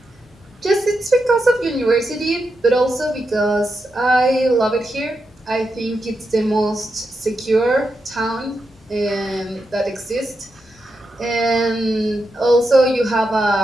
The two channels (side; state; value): both; normal; correlation 0.86